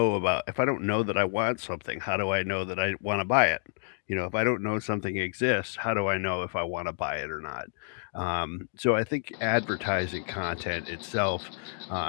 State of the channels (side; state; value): right; silent; digital silence